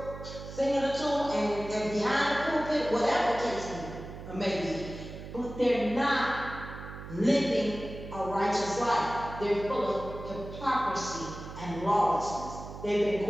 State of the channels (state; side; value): noise; right; hum, 12 dB below the sound